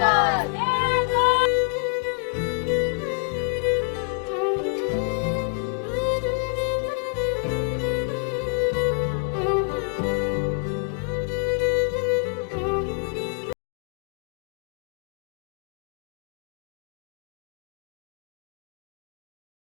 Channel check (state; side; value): quieter; right; 39.5 dB